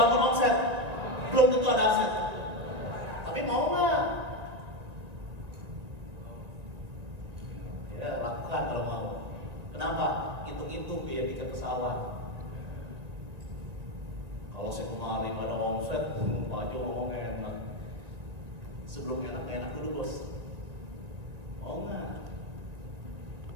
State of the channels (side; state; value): left; late; 2.0 ms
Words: omset. Belum tentu ada aset. Tapi mau nggak? Ya, lakukan kalau mau. Kenapa? Hitung-hitung biaya tiket pesawat. Kalau saya kemarin ada omset, Pak Jo ngomong enak. Sebelum enak dulu bos. Mau nggak?